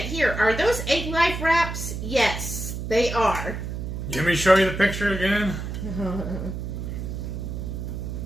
hear. Are those egg life wraps? Yes, they are. Let me show you the picture again.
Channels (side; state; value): right; noise; hum, 5 dB below the sound